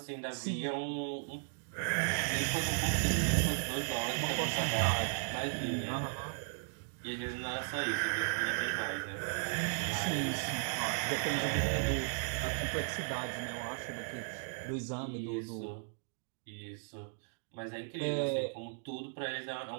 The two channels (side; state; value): left; silent; digital silence